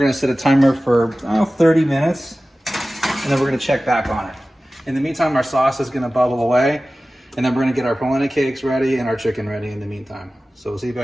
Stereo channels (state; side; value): normal; both; correlation 0.96